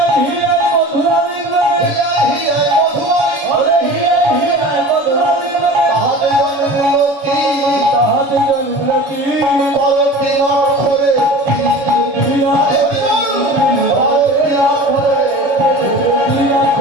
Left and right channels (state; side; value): late; left; 7.1 ms